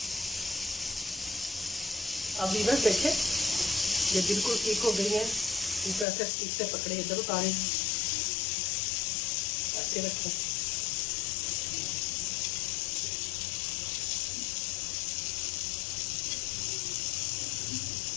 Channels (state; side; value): drops out; right; at 6.1 s